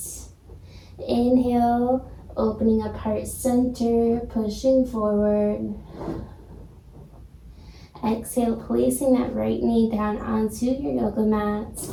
Inhale, opening up heart center, pushing forward. Exhale, placing that right knee down onto your yoga mat.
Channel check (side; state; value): both; identical; correlation 1.00